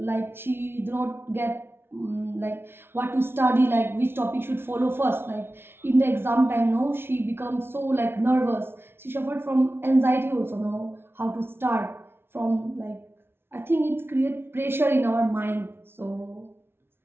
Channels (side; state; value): left; late; 0.11 ms